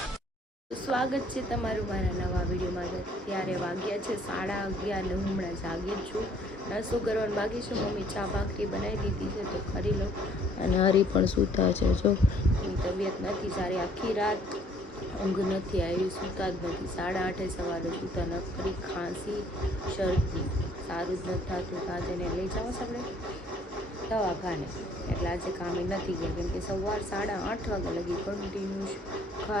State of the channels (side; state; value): both; normal; correlation 0.61